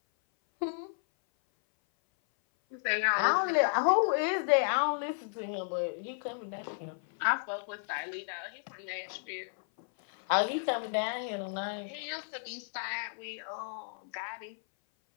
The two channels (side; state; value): right; silent; 56 dB below the other